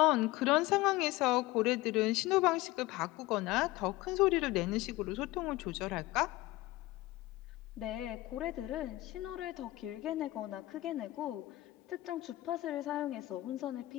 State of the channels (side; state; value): right; quieter; 18.5 dB